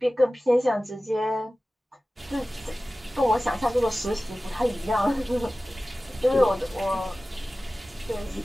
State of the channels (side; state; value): both; normal; correlation 0.96